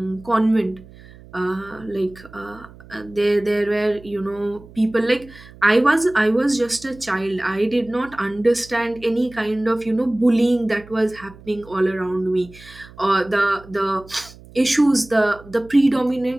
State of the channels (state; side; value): noise; right; hum, 21 dB below the sound